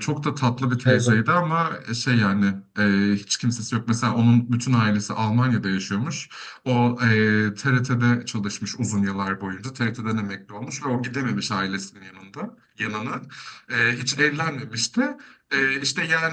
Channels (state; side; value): identical; both; correlation 1.00